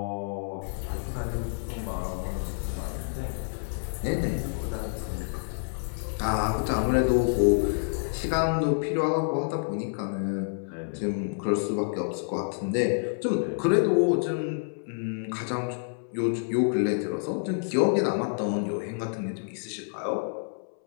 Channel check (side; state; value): right; silent; 59 dB below the other